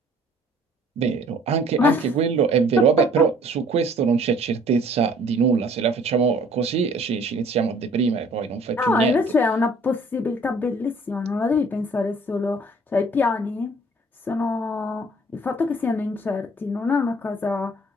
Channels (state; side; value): normal; both; correlation 0.55